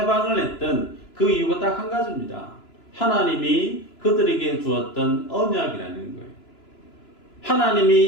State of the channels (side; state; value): right; late; 3.0 ms